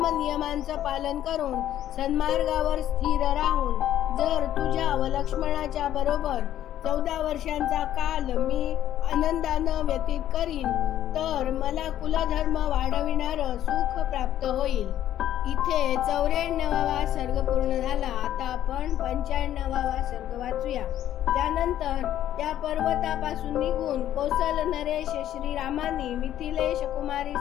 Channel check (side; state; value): right; quieter; 11.9 dB